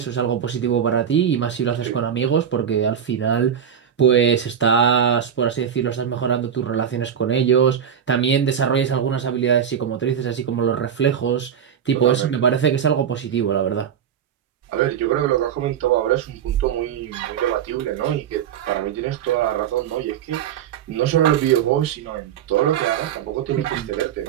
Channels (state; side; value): quieter; left; 8.6 dB